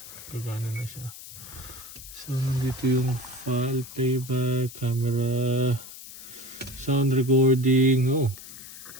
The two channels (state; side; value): noise; left; hiss, 15 dB below the sound